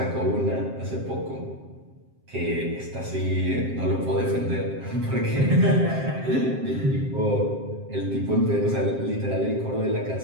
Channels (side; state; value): left; late; 7.6 ms